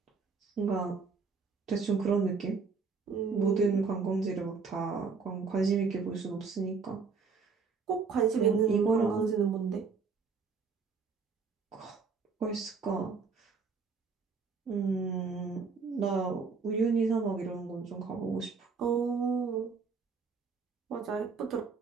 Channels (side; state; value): left; quieter; 5.1 dB